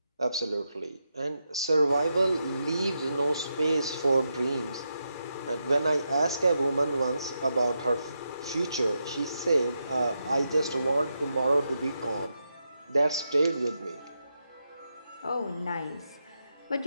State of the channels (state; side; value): inverted; both; correlation -0.85